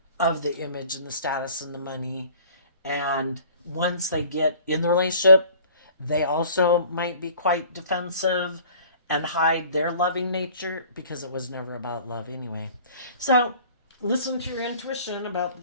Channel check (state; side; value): inverted; both; correlation -0.49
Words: of the image and the status and the money. And once they get in the relationship, they also might be quite defensive and hide their loving nature because it was never about love anyway. So listen to your intuition about the